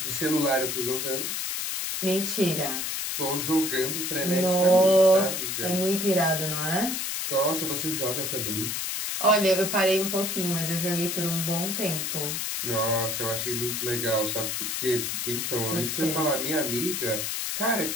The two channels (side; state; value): left; noise; hiss, 2 dB below the sound